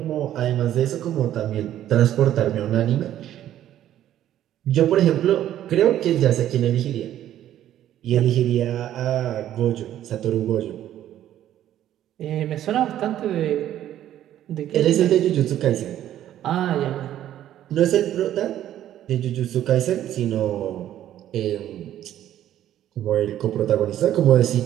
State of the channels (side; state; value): left; quieter; 11.9 dB